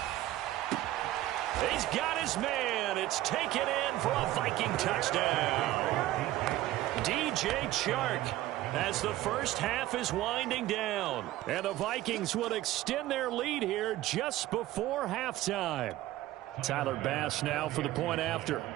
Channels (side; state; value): left; quieter; 15.4 dB